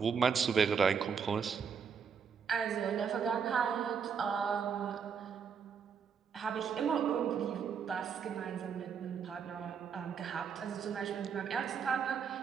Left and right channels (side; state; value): left; quieter; 6.6 dB